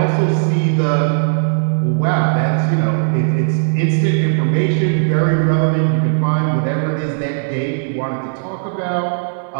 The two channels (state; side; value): silent; left; 68 dB below the other